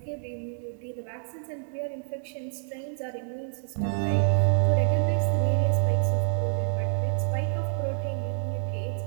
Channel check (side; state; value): left; silent; digital silence